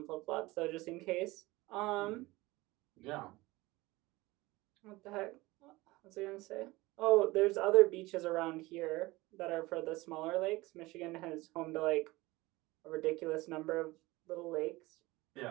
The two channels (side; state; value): left; quieter; 20.7 dB